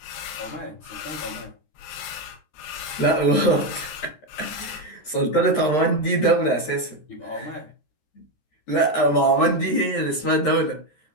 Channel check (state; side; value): late; right; 13 ms